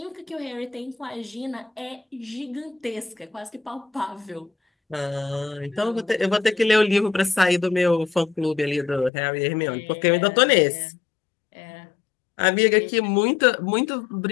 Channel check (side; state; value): right; drops out; at 9.1 s